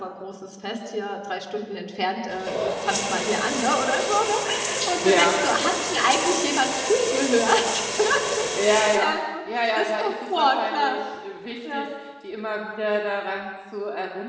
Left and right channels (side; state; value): both; identical; correlation 1.00